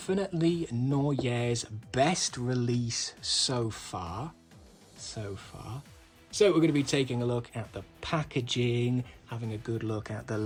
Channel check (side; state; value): both; identical; correlation 1.00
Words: Nawya's best release so far. So we're going to be taking a look at the packaging, having a good look at the